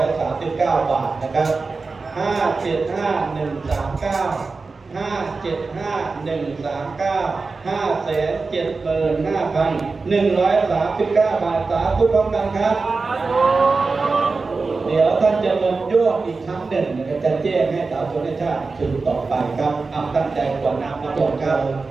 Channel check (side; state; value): left; quieter; 4.1 dB